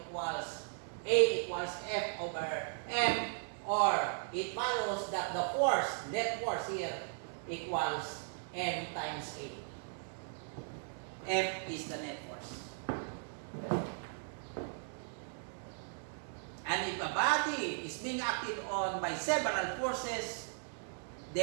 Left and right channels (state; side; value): silent; left; digital silence